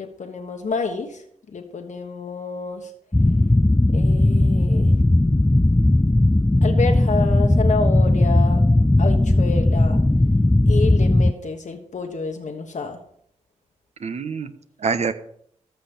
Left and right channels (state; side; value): normal; both; correlation 0.94